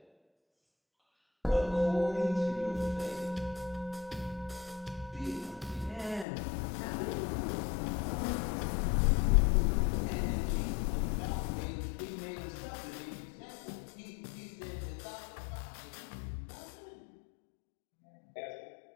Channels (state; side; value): drops out; right; at 6.2 s